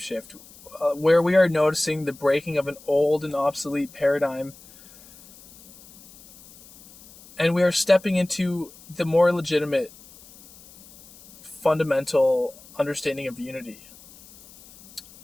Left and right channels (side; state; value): left; noise; hiss, 23 dB below the sound